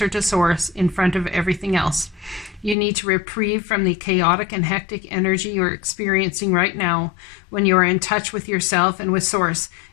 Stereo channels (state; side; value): drops out; right; at 2.8 s